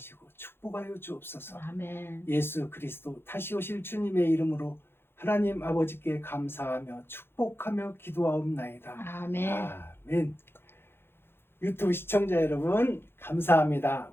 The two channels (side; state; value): right; late; 0.11 ms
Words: 축복하여 주옵소서. 아멘. 예수 그리스도 다시 오실 주님의 이름으로 하나님 아버지께 감사하며 축복하며 기도하옵나이다. 아멘. 아멘. 유튜브 시청자 여러분 감사합니다.